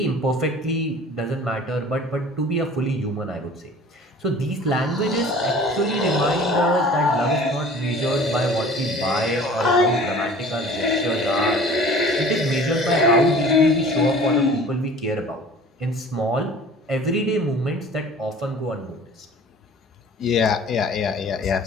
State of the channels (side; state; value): both; normal; correlation 0.46